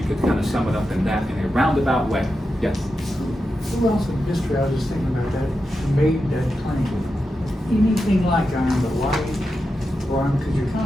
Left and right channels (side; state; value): both; normal; correlation 0.89